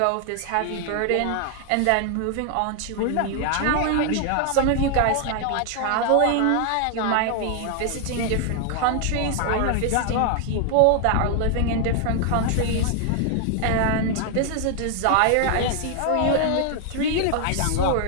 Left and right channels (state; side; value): different; both; correlation 0.00